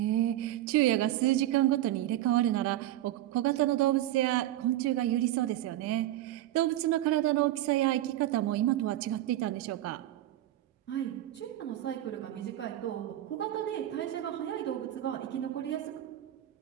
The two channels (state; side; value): quieter; left; 13.9 dB